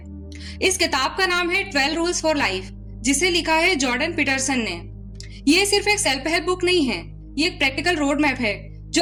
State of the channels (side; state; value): both; identical; correlation 1.00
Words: इस किताब का नाम है 12 रूल्स फॉर लाइफ, जिसे लिखा है जॉर्डन पीटरसन ने। ये सिर्फ एक सेल्फ हेल्प बुक नहीं है, ये एक प्रैक्टिकल रोड मैप है